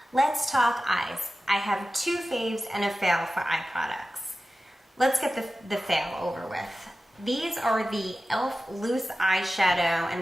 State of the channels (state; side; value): normal; both; correlation 0.95